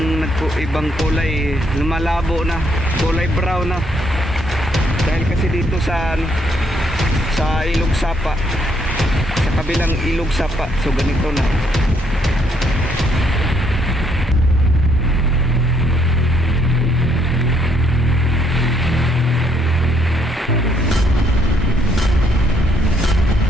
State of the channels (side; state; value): both; normal; correlation 0.70